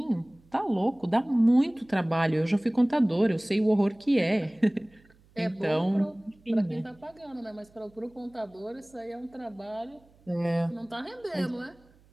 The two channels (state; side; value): noise; right; hum, 30 dB below the sound